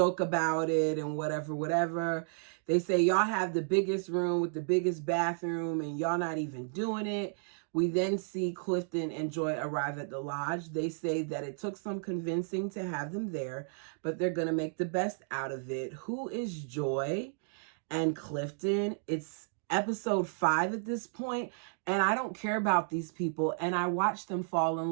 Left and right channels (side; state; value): left; silent; digital silence